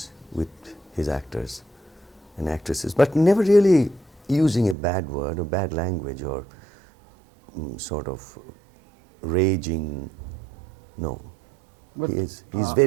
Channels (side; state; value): left; drops out; at 4.8 s